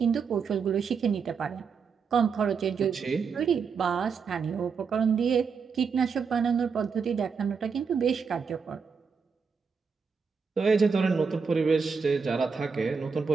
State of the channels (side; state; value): left; quieter; 5.6 dB